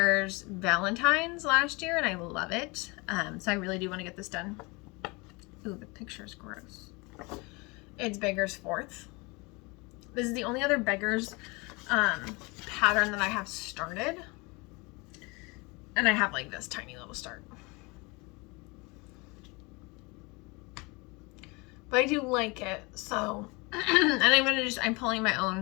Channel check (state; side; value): quieter; right; 27.0 dB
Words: Valentine's last year, and I love it. So I really do want to get this done. Ooh, the picture's gross. It's Beggar's 4th. This is the only other Beggar's pattern that I have started. And I have like this tiny little start. But I do like it, so and I'm pulling my